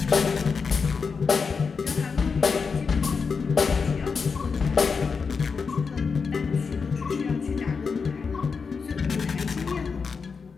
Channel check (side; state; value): right; quieter; 5.3 dB